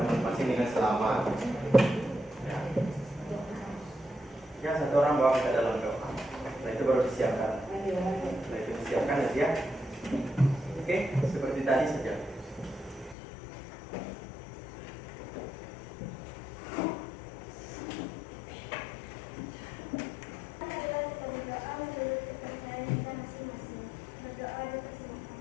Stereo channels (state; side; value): drops out; right; at 13.2 s